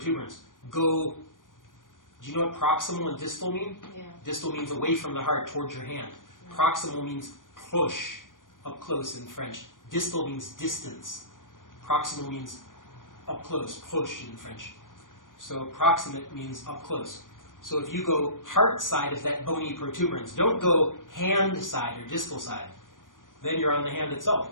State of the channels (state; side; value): late; right; 0.89 ms